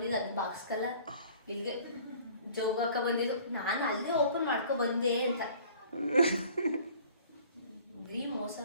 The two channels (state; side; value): inverted; both; correlation -0.51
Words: ಅದನ್ನ ಬಾಕ್ಸ್ ಕಲ್ಲ ಇಲ್ಲಿಗೆ ಜೋಬ್ ಹಾಕ ಬಂದಿದ್ದು. ನಾನು ಅಲ್ಲೇ ಓಪನ್ ಮಾಡ್ಕೊ ಬಂದೆ ಅಂತ. ಬರೀ ಮೋಸ.